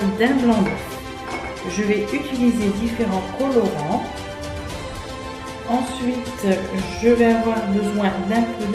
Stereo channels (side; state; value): both; identical; correlation 1.00